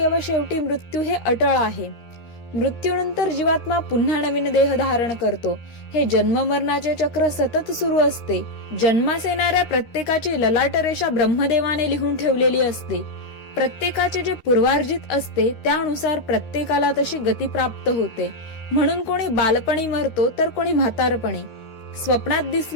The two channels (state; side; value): late; right; 13 ms